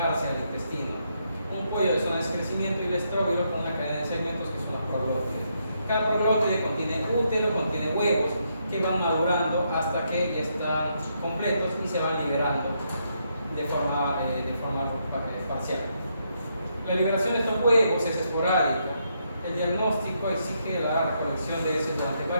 al intestino. Un cuello de zonas de crecimiento y el estróbilo con una cadena de segmentos que son los proglótides. Cada proglótide contiene útero, contiene huevos que van madurando hasta que ya están completos y se van liberando de forma parcial. La liberación de estos huevos es esporádica. El diagnóstico exige la recolección de heces durante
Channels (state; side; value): inverted; both; correlation -0.78